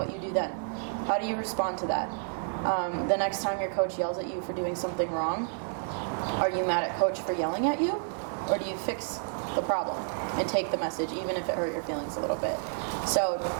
you do then. How do you respond to that? The next time your coach yells at you for doing something wrong, Are you mad at coach for yelling at you? Or do you fix the problem and take the message, even if it hurt your feelings a little bit? So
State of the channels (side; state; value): left; silent; digital silence